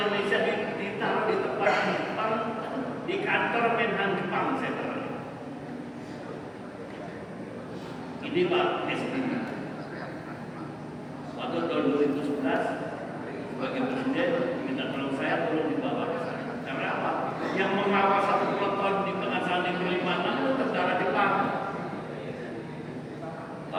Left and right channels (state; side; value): identical; both; correlation 1.00